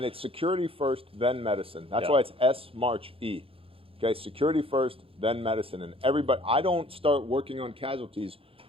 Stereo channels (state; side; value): late; left; 0.27 ms